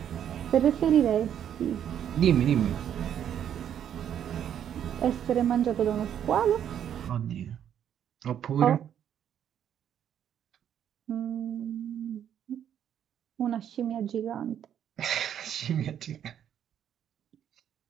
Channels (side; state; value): left; quieter; 9.6 dB